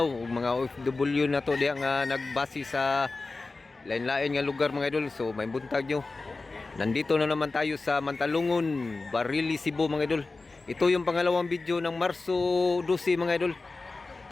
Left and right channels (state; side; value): quieter; right; 3.6 dB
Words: ug mga OFW na to diha nga nagbase sa lain-lain nga lugar mga idol. So may buntag nyo. Nandito na naman tayo sa Mantalungon, Barili, Cebu mga idol. Ito yung pangalawang video ng Marso 12 mga idol.